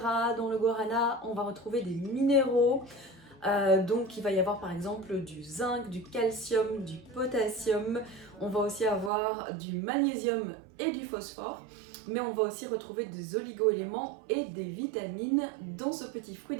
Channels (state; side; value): drops out; left; at 9.1 s